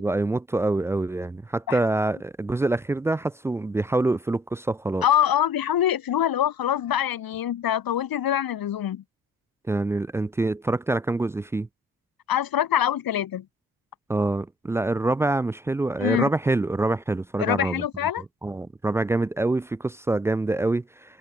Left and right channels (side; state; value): both; normal; correlation 0.58